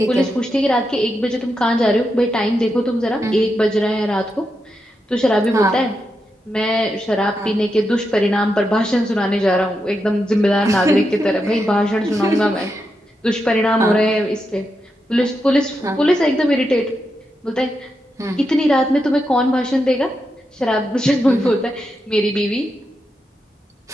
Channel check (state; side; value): normal; both; correlation 0.86